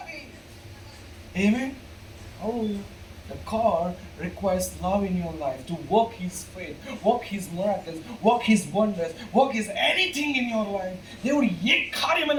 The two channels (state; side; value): identical; both; correlation 1.00